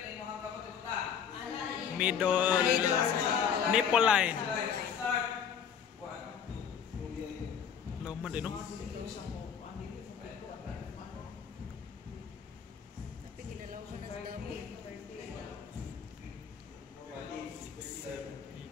tayo mukhang kapag utang? Middle nipple line. Start. 1, 2. Laman din, no? Tapi ginalaw ko na sa dami. 8, 9,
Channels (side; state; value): right; quieter; 7.7 dB